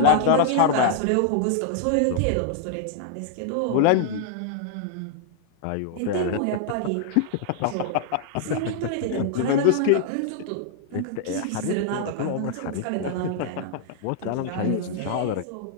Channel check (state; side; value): different; both; correlation 0.00